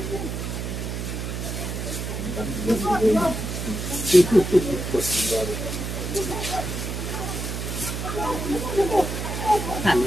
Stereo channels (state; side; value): noise; right; hum, 4 dB below the sound